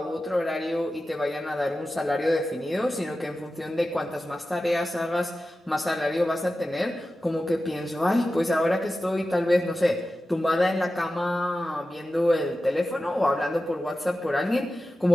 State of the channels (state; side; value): normal; both; correlation 0.93